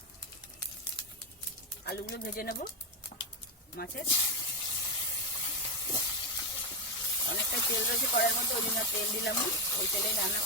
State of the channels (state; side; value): normal; both; correlation 0.08